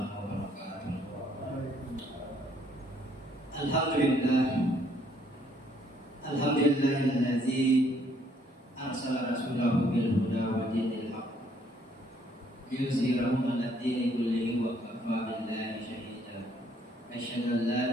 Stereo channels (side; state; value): both; normal; correlation 0.66